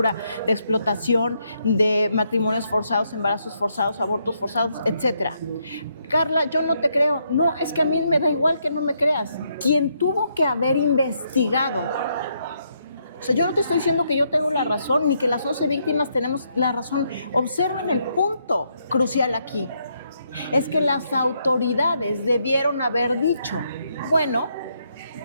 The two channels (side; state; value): both; inverted; correlation -0.76